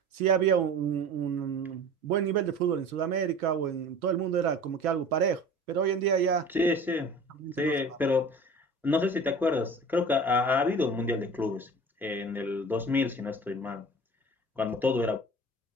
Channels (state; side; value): normal; both; correlation 0.40